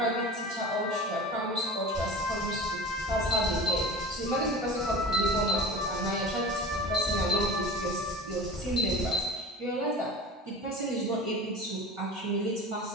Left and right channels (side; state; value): both; normal; correlation 0.34